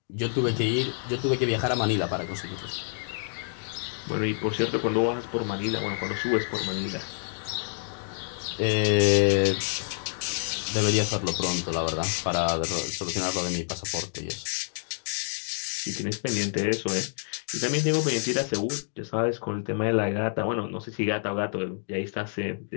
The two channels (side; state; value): right; silent; digital silence